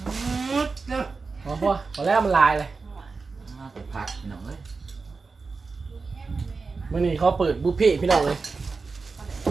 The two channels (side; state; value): left; quieter; 4.3 dB